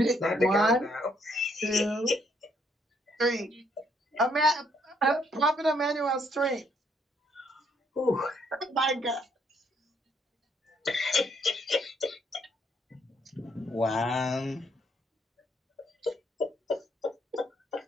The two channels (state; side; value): normal; both; correlation 0.70